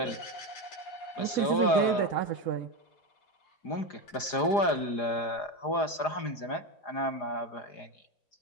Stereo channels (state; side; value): late; right; 4.9 ms